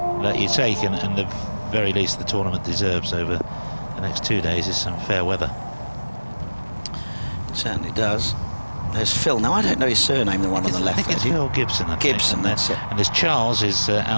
that you take, and the very least the tournament deserves over the next 2 days is some fair weather. It certainly does. There's Phil. Now I don't know his surname, the one on the left. I think it's Phil Gibson. Gibson, that's it. And there's Charles is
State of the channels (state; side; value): inverted; both; correlation -1.00